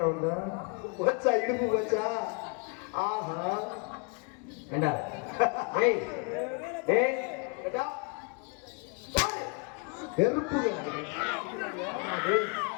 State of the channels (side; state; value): right; quieter; 35.2 dB